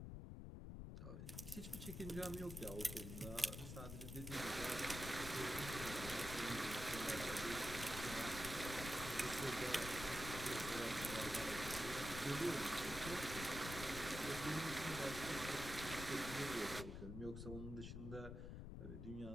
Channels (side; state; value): left; noise; rumble, 7 dB below the sound